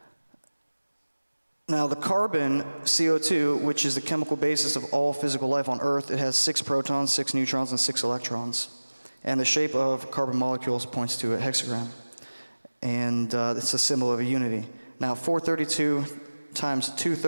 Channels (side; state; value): both; inverted; correlation -1.00